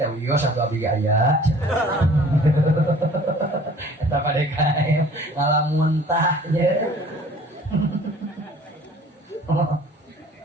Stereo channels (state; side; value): normal; both; correlation 0.51